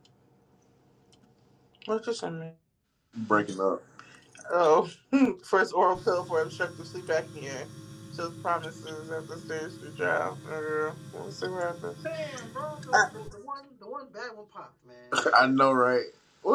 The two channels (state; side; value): identical; both; correlation 1.00